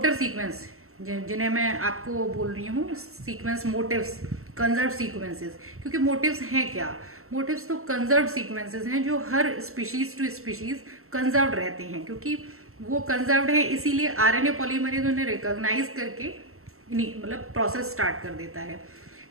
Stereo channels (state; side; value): late; left; 0.63 ms